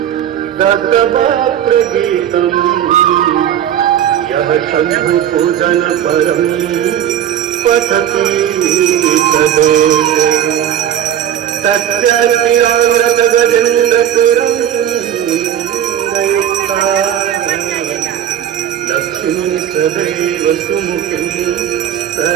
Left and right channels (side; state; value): left; quieter; 10.2 dB